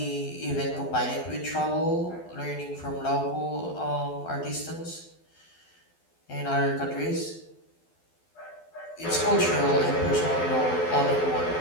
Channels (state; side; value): late; right; 12 ms